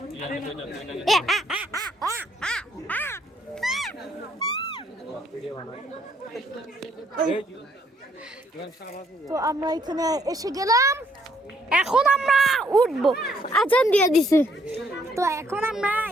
তো আমরা এখানে এসে গেলাম, এখন আমরা উঠবো। আজান দিয়ে দিছে, তো এখন আমরা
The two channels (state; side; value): normal; both; correlation 0.69